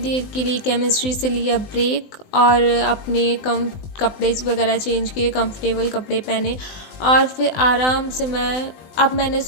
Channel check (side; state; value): right; late; 20 ms